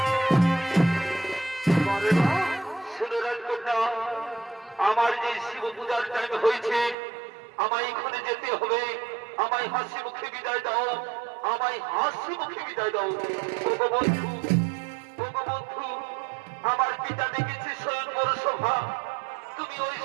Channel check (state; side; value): drops out; left; at 7.0 s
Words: আমার যে শিব পূজার টাইম হয়েছে, আমায় এখানে যেতে হবে। আমায় হাসি মুখে বিদায় দাও, আমায় হাসি মুখে বিদায় দাও। ওগো বন্ধু, ওগো বন্ধু, আমার পিতা ডেকেছে স্বয়ংবর সভা, তুমি ওই